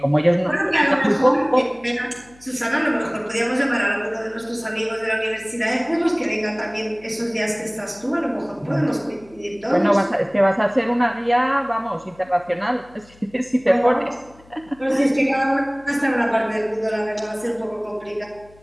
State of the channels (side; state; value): left; noise; hum, 26 dB below the sound